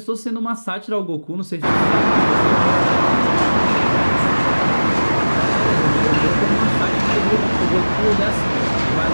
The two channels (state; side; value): inverted; both; correlation -1.00